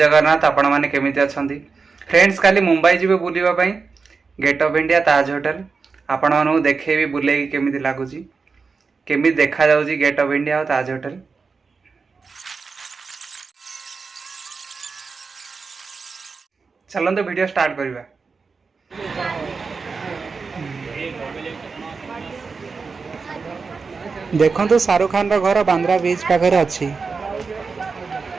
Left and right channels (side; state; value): left; quieter; 4.8 dB